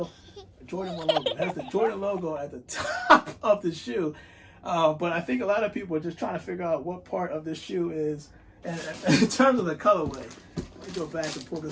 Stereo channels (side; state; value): both; identical; correlation 1.00